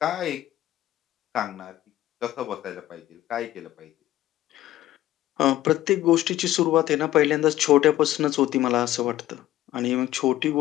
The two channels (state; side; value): quieter; right; 14.3 dB